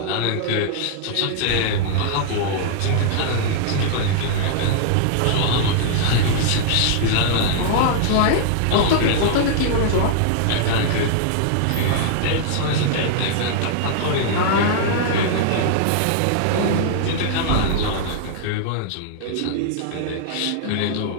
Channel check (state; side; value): different; both; correlation -0.01